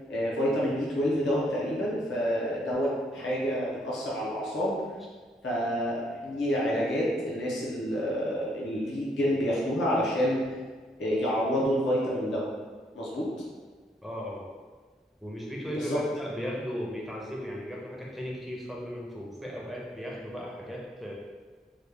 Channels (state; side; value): normal; both; correlation 0.70